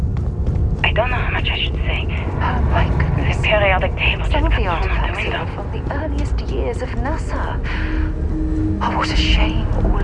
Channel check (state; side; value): identical; both; correlation 1.00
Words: I don't know how much I should say. Oh my goodness. The periodic table just Some of got the thrown out the artifacts here window. are from the earliest years of NASA. Oh, what a shame